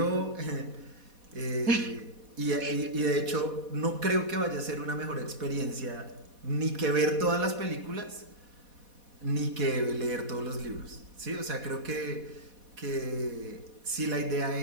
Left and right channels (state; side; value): late; left; 4.1 ms